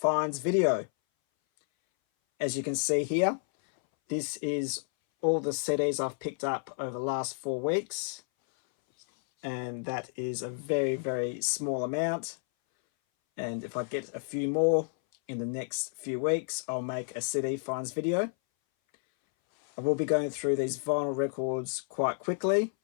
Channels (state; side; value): silent; right; 57 dB below the other